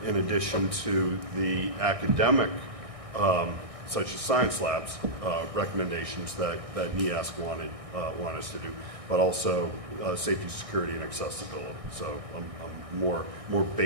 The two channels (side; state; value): left; late; 1.6 ms